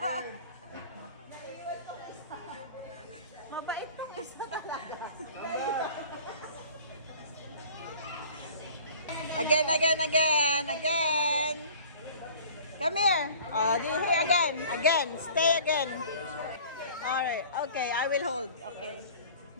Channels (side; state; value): both; inverted; correlation -0.46